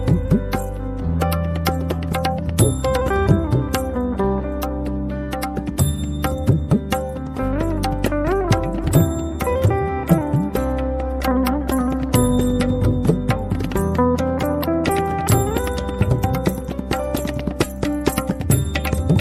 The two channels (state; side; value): identical; both; correlation 1.00